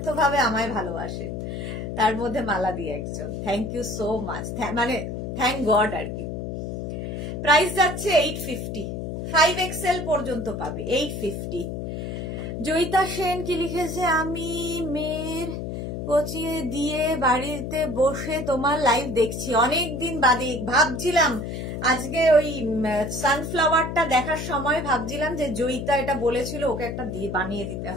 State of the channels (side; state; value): left; noise; hum, 5 dB below the sound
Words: আমায় ভালোবাসেন, তার মধ্যে মালাদি একজন। থ্যাংক ইউ সো মাচ, মানে থ্যাংক গড আর কি। প্রাইস যাচ্ছে 850, 5XL পর্যন্ত পাবে 850। জয়িতা সেন কি লিখেছে, আমি মেয়ের কোচিয়ে দিয়ে বাড়িতে বসে তোমার লাইভ দেখছি, অনেকদিন বাদে। ভাবছিলাম আজকে ওই সানফ্লাওয়ারটা দেখার সময় ভাবছিলাম যে জয়িতা এটা বলেছিল ওকে একটা দিয়ে বানিয়ে দিতে